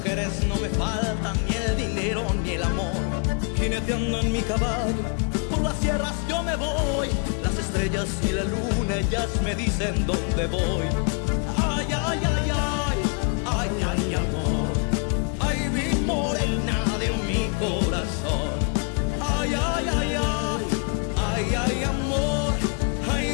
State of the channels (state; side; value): quieter; right; 37.6 dB